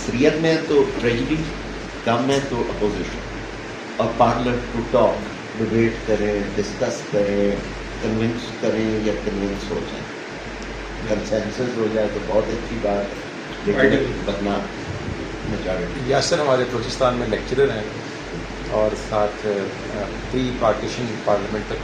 میں تو ٹریجڈی, کم ہے تو اپوزیشن, اور پارلر ٹو ٹاک, ڈبیٹ کریں, ڈسکس کریں, کنونس کریں یا کنونس ہو جائیں. کنسنسس ہو جائے تو بہت اچھی بات ہے، لیکن ورنہ میجارٹی یاسر ہمارے بلوچستان میں لیکچرر ہیں اور ساتھ پری پارٹیشن پارلیمنٹ کا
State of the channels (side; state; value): both; identical; correlation 1.00